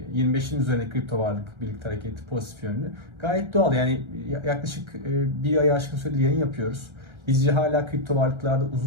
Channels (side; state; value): left; late; 1.3 ms